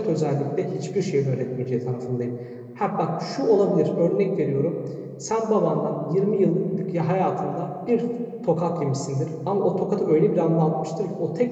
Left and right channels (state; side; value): identical; both; correlation 1.00